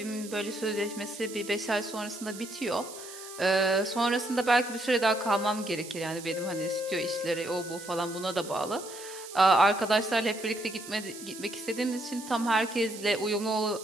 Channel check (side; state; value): right; noise; hiss, 14 dB below the sound